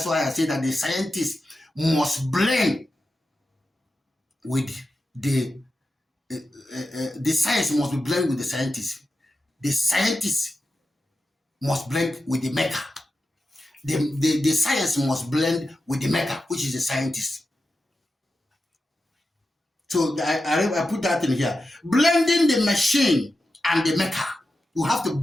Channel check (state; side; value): normal; both; correlation 0.91